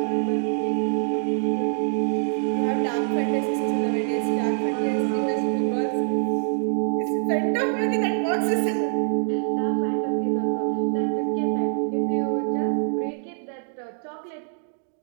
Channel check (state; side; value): silent; left; 62 dB below the other